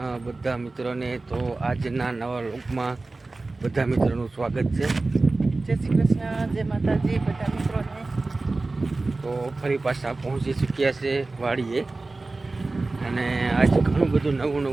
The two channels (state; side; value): quieter; left; 3.3 dB